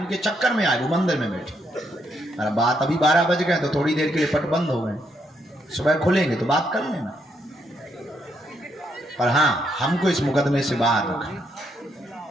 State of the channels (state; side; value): normal; both; correlation 0.76